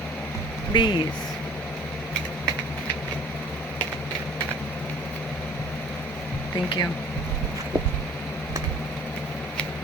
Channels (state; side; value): normal; both; correlation 0.50